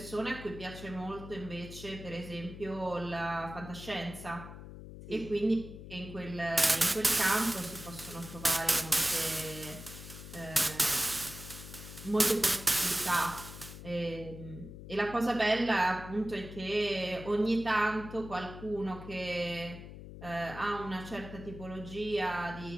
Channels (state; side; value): noise; left; hum, 13 dB below the sound